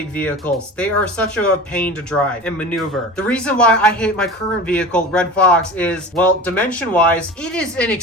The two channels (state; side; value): normal; both; correlation 0.35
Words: vehicles. They are such a pain to drive and maneuver. The reason why I hate my current vehicle, Red Fox, is, well, dimension-wise, it is an